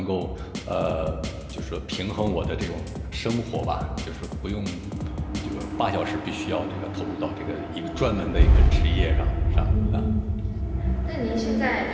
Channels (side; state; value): both; identical; correlation 1.00